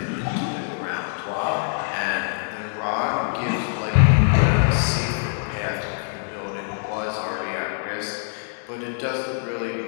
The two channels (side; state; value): right; silent; digital silence